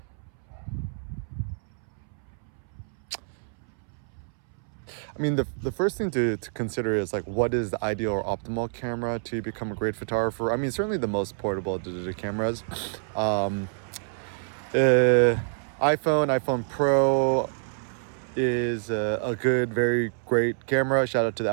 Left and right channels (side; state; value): left; silent; 60 dB below the other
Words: the first thing to consider is like, what is the ideal or optimal camera to become a great photographer? Certainly the most portable digital cameras. iPhone Pro is a good, very great camera. Shout out to the